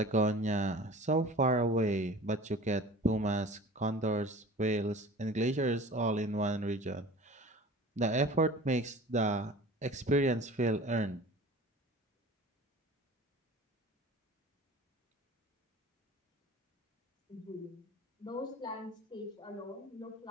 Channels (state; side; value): normal; both; correlation 0.41